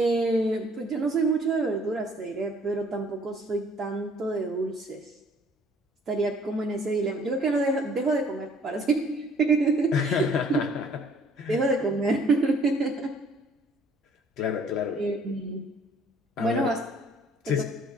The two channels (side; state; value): both; normal; correlation 0.58